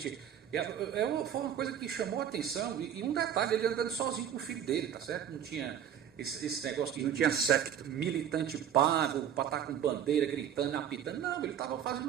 Foi uma coisa que chamou a atenção. E um detalhe, ele andando sozinho com o filho dele, tá certo? Não tinha esse negócio de... Não tinha secto. Militante pago, para estar com bandeira, gritando, apitando. Não, ele estava fazendo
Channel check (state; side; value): quieter; left; 9.5 dB